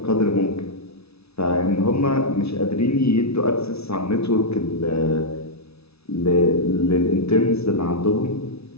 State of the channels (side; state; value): right; late; 0.79 ms